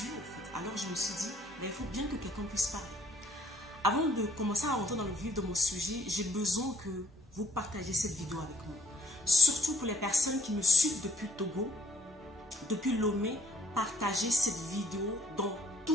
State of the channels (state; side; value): normal; both; correlation 0.64